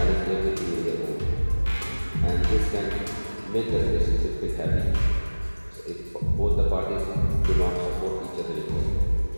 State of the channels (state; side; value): inverted; both; correlation -1.00